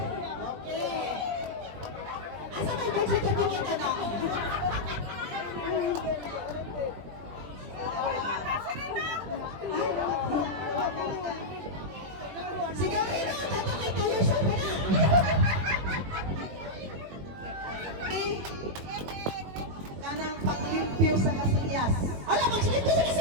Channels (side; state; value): left; late; 21 ms